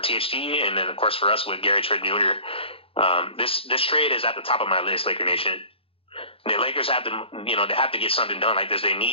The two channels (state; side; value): late; right; 0.27 ms